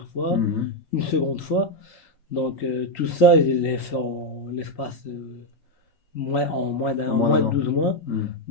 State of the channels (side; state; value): right; late; 3.9 ms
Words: fois, Mhm. une seconde fois. Donc, tout ça, je l'ai fait en l'espace En en moins moins d'un de an. 12 mois. Mhm.